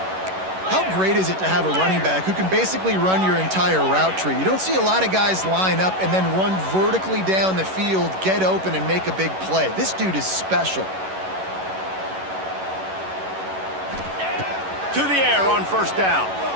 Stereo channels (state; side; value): late; left; 11 ms